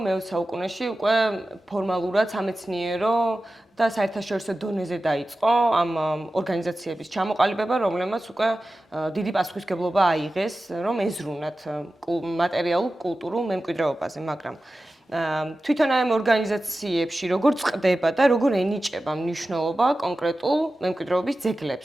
მე-20 საუკუნეში უკვე ფორმალურად სამეცნიერო და საერთაშორისო დონეზე დაიწყო ამ ორგანიზაციების ჩამოყალიბება, რომლებმაც უკვე დიდი პასუხისმგებლობა აიღეს, რომ ეზრუნათ მატერიალურ კულტურულ მემკვიდრეობაზე, მაგრამ თვითონ ამ ორგანიზაციებში როგორ წყდება და როგორ ენიჭება მნიშვნელობა კონკრეტულ მემკვიდრეობის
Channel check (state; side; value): normal; both; correlation 0.94